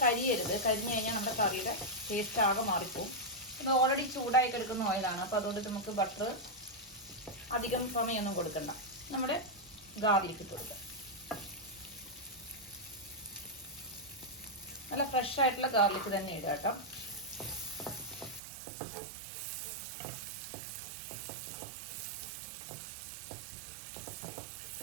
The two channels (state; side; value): drops out; left; at 18.4 s